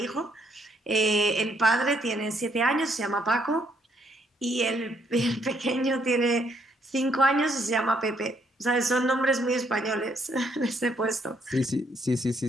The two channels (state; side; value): normal; both; correlation 0.70